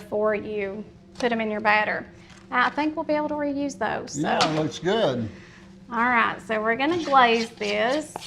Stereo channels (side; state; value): both; identical; correlation 1.00